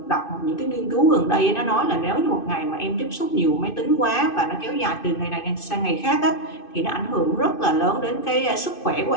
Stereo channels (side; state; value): right; late; 2.6 ms